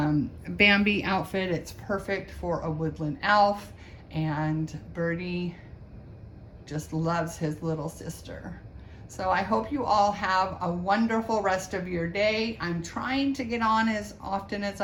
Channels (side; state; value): both; identical; correlation 1.00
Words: outfit. It's perfect for a woodland elf, and Birdie just loves his little sister. So I hope you all have a wonderful rest of your day. I'm trying to get on as often as